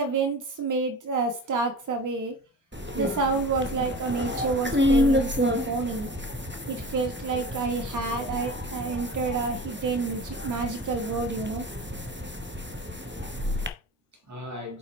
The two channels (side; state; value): both; normal; correlation 0.35